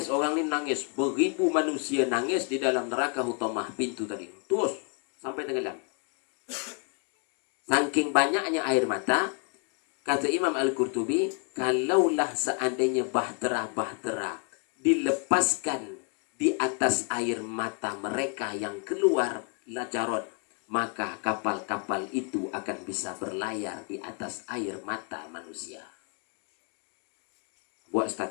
Beribu manusia nangis di dalam neraka hutamah pintu tadi. Terus sampai tenggelam. Saking banyaknya air mata, kata Imam Al-Qurtubi, kalaulah seandainya bahtera dilepaskan di atas air mata mereka yang keluar lajarot, maka kapal-kapal itu akan bisa berlayar di atas air mata manusia. Buat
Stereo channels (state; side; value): quieter; right; 37.3 dB